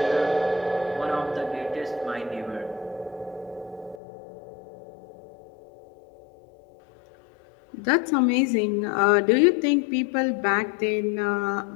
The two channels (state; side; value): drops out; right; at 4.0 s